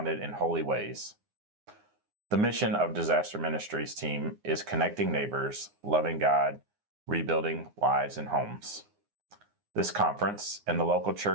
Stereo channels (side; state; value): left; late; 9.7 ms